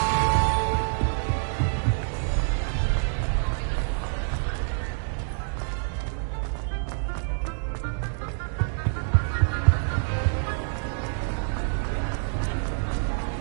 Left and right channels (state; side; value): silent; left; digital silence